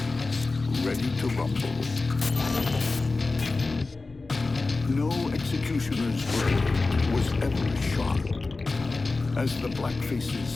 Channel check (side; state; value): right; quieter; 3.6 dB